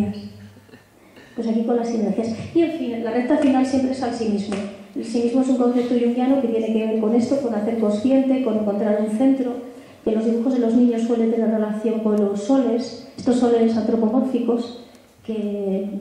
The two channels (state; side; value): identical; both; correlation 1.00